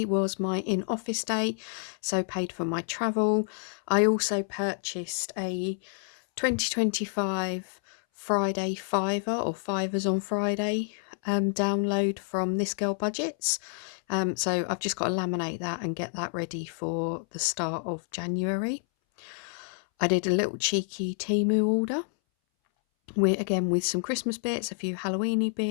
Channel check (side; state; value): right; silent; 59 dB below the other